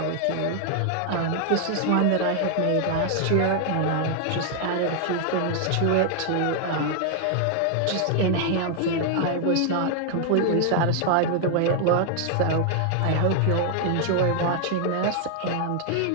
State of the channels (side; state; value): both; different; correlation 0.00